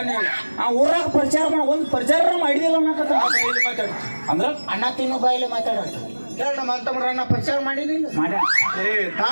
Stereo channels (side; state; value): both; inverted; correlation -1.00